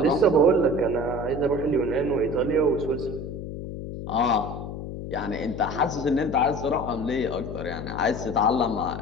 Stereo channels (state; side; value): noise; left; hum, 8 dB below the sound